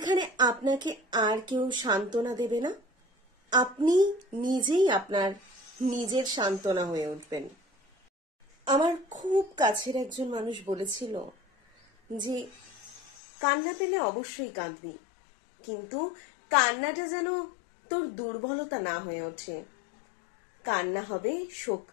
আপনাকে আর কেউ সান্ত্বনা দেবে না। আপনি নিজেই আপনার নিজের সান্ত্বনা হয়ে উঠবেন। আমার খুব কাছের একজন মানুষ বলেছিল যে কান্না পেলে অবশ্যই কাঁদবি, কিন্তু কান্নাটা যেন তোর দুর্বলতা না হয়ে ওঠে। কান্না হবে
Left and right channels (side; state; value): right; drops out; at 13.0 s